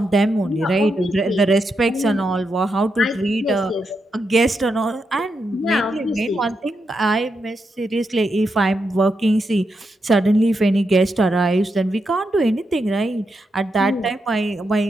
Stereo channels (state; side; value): normal; both; correlation 0.84